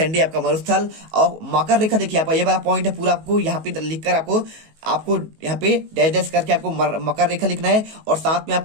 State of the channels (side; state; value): left; late; 19 ms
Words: आपका मरुस्थल। और मकर रेखा देखिए आपका ये वाला पॉइंट है पूरा आपको यहाँ पे लिखकर आपको आपको यहाँ पे डैश डैश करके आपको मकर रेखा लिखना है और साथ में